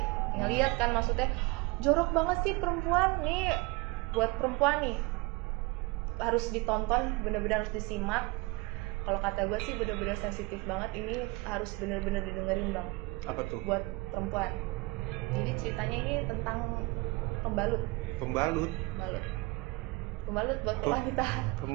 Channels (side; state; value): left; quieter; 24.0 dB